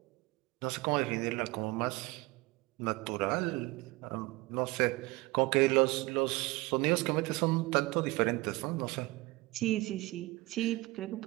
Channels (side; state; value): left; quieter; 21.7 dB